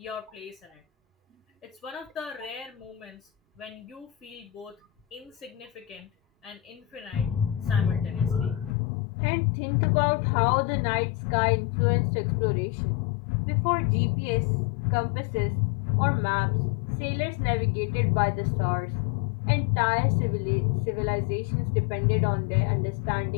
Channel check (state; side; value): drops out; right; at 8.7 s